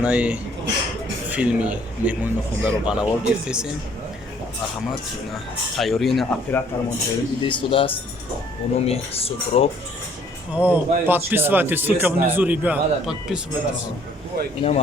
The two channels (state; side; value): normal; both; correlation 0.61